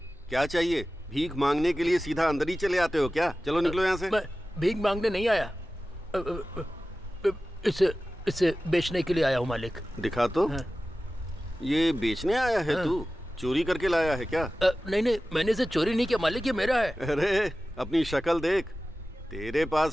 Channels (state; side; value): normal; both; correlation 0.95